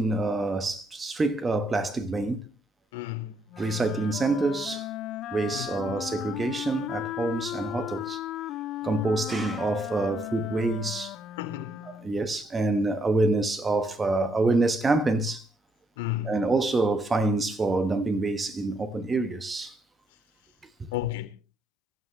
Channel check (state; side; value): normal; both; correlation 0.73